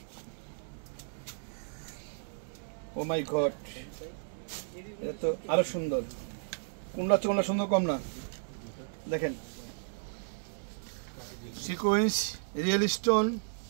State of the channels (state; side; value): silent; left; digital silence